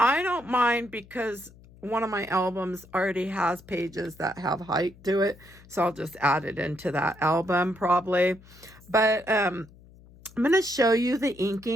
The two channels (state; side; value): noise; left; hum, 23 dB below the sound